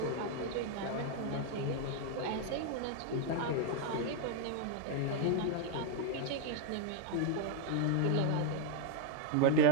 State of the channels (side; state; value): both; different; correlation 0.00